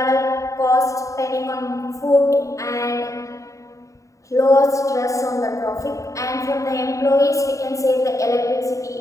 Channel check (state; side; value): late; right; 0.16 ms